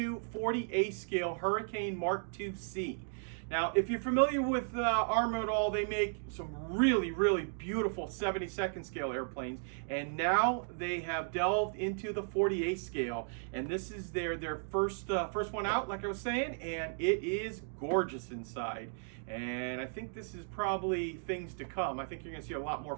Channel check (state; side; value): silent; left; digital silence